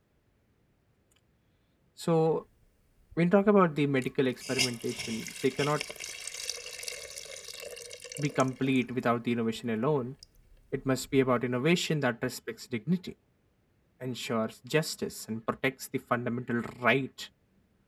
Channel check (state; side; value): identical; both; correlation 1.00